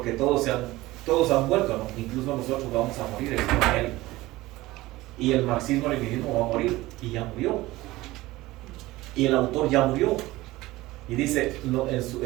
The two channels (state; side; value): quieter; left; 18.5 dB